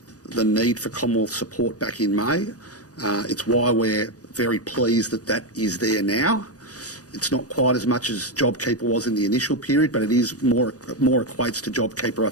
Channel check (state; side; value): late; right; 0.67 ms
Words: the need for Commonwealth support back in May. It's why we're very pleased that that is there now. It's not quite as much as JobKeeper was in the initial period, but it is more equates to JobKeeper, I